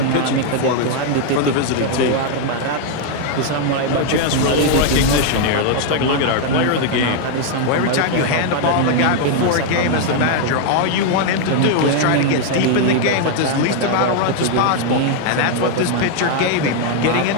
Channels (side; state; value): both; different; correlation 0.00